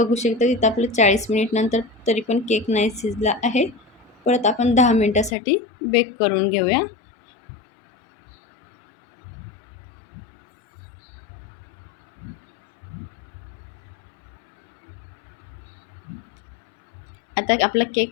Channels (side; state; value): right; drops out; at 5.4 s